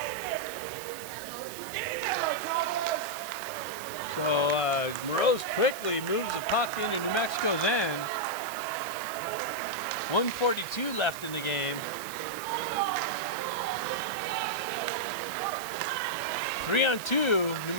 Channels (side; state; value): right; noise; hiss, 12 dB below the sound